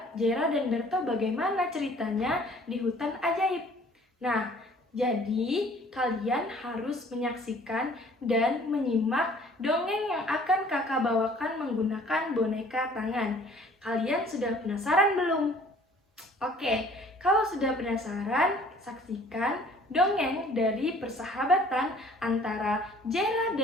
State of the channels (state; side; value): normal; both; correlation 0.54